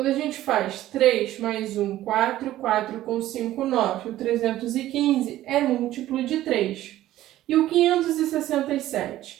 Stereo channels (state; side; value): quieter; left; 14.3 dB